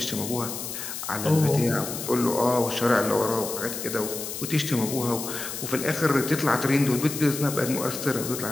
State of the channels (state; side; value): noise; left; hiss, 7 dB below the sound